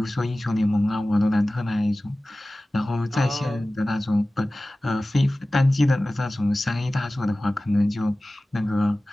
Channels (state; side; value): normal; both; correlation 0.97